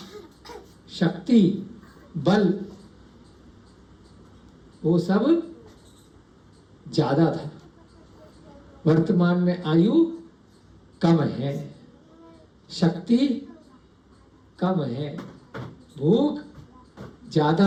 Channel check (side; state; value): both; identical; correlation 1.00